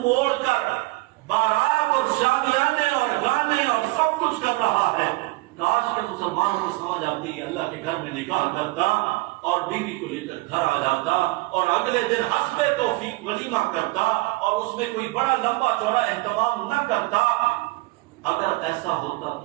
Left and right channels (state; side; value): quieter; left; 22.5 dB